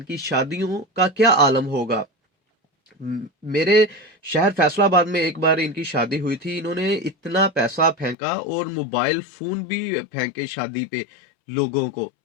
शादियों का क्या आलम होगा। मेरे शहर फैसलाबाद में एक बार इनकी शादी हुई थी, इन्होंने इतना पैसा फेंका और मोबाइल फोन भी फेंके शादी पे लोगों को,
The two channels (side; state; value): right; drops out; at 8.2 s